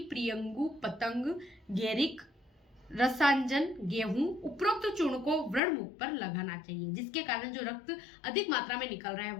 पतंग, गेरिक, रसांजन, गेहूं, उपरोक्त चूर्ण को व्रण मुख पर लगाना चाहिए, जिसके कारण जो रक्त अधिक मात्रा में निकल रहा है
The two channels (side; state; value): right; drops out; at 5.6 s